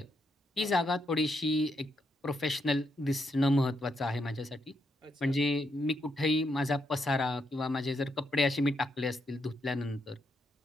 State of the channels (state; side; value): normal; both; correlation 0.79